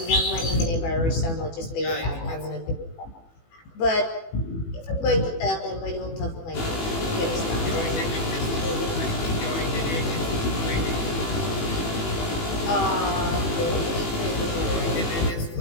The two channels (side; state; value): right; late; 18 ms